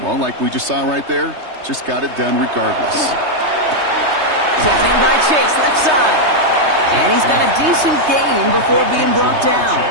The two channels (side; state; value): left; late; 3.2 ms